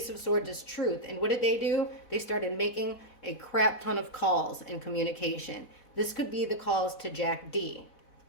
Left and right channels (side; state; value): right; late; 4.1 ms